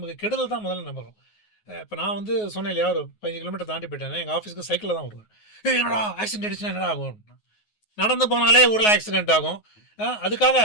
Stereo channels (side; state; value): right; late; 9.5 ms